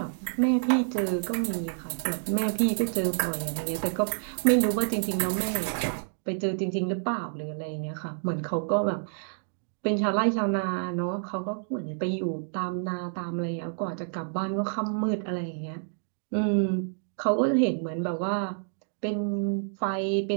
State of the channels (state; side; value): silent; left; digital silence